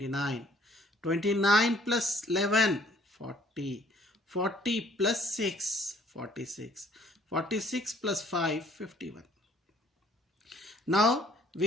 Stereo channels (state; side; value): normal; both; correlation 0.60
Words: 29 plus 11, 40, 40 plus 6, 46, 46 plus 5, 51. Now